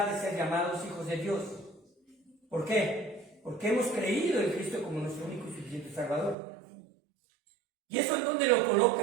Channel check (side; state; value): left; drops out; at 6.4 s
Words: de ser llamados hijos de Dios. ¿Por qué? Porque hemos creído en Cristo como nuestro único y suficiente Salvador. ¿Y eso en dónde lo